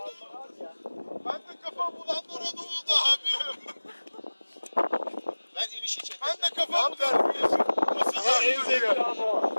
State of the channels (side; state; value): both; inverted; correlation -1.00